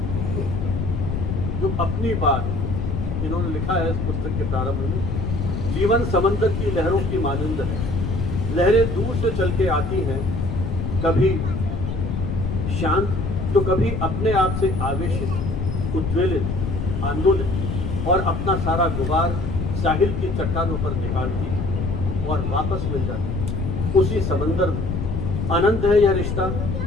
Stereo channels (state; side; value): noise; left; rumble, 2 dB below the sound